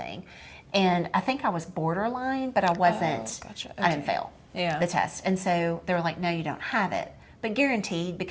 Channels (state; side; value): identical; both; correlation 1.00